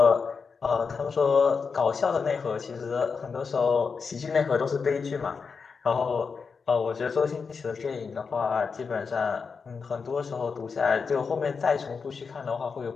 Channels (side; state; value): right; quieter; 5.3 dB